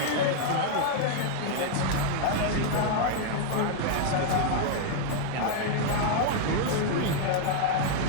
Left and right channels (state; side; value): different; both; correlation 0.00